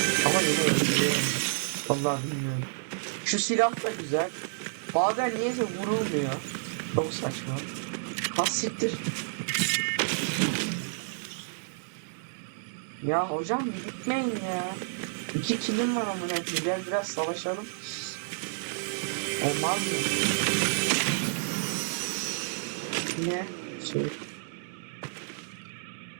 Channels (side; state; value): left; silent; digital silence